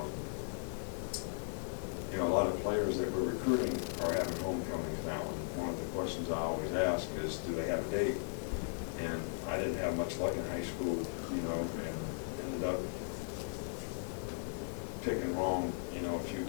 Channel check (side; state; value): right; silent; digital silence